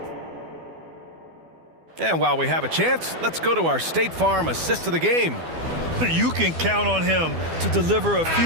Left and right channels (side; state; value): left; late; 12 ms